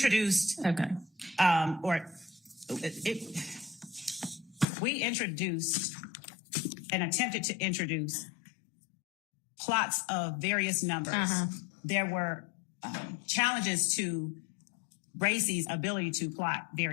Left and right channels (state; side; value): drops out; right; at 4.7 s